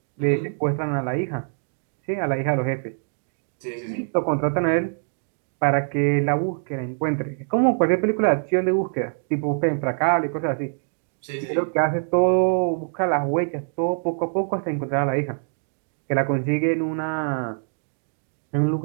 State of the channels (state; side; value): silent; left; digital silence